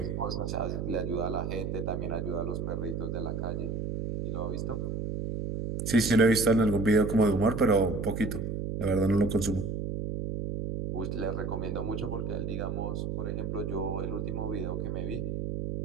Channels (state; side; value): noise; right; hum, 3 dB below the sound